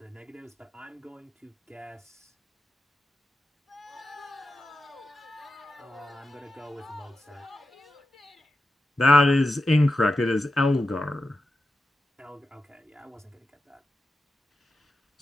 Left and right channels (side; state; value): both; normal; correlation 0.90